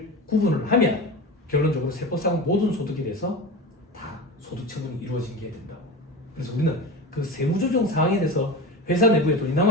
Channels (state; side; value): normal; both; correlation 0.27